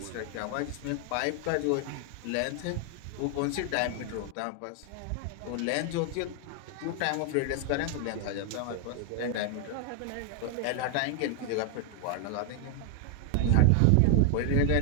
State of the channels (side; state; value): both; different; correlation 0.00